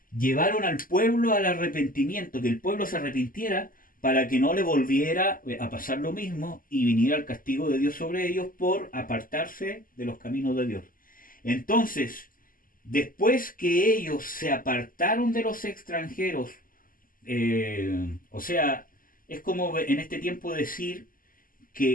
llevaron al pueblo al arrepentimiento, que el pueblo se arrepintiera para que no le volviera a pasar lo mismo y viniera el castigo de Dios sobre ellos por apartarse de los caminos de Dios. Entonces, después que ellos se apartaron de los extranjeros, o sea, es como en este tiempo decir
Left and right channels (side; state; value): right; late; 0.41 ms